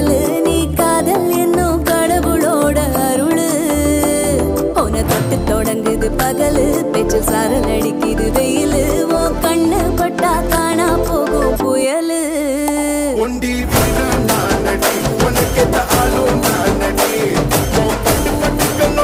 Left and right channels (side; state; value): both; identical; correlation 1.00